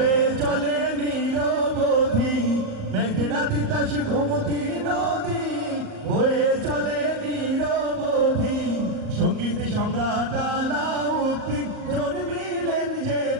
চলে নিরবধি, মেঘনা তিতাস গোমতী নদী বয়ে চলে নিরবধি। সঙ্গীত সম্রাট আলাউদ্দিন জন্মিলেন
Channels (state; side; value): late; left; 38 ms